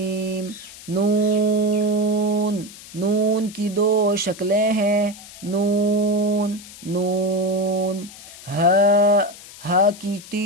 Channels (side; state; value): left; noise; hiss, 17 dB below the sound